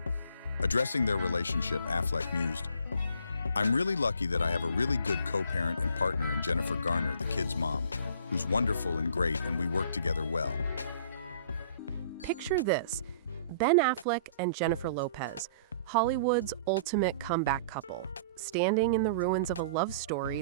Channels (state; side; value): inverted; both; correlation -0.52